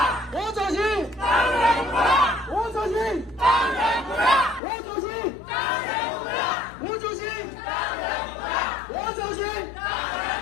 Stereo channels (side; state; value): right; drops out; at 4.6 s